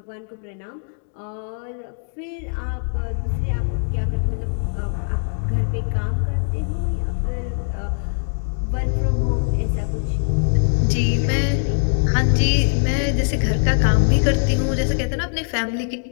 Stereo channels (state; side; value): silent; right; digital silence